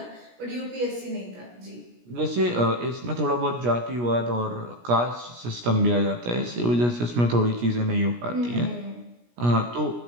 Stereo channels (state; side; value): late; left; 17 ms